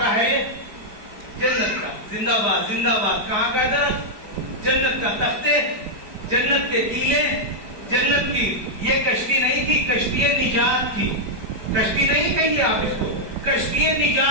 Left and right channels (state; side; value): late; left; 4.3 ms